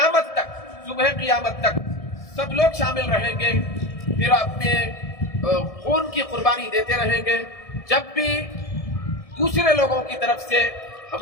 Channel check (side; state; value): right; late; 1.7 ms